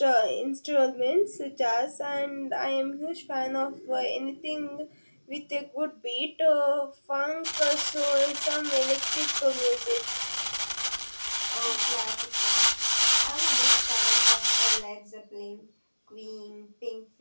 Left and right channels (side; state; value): both; inverted; correlation -1.00